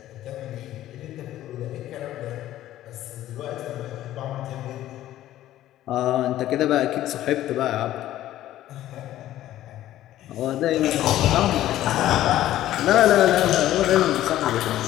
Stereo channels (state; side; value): quieter; right; 13.6 dB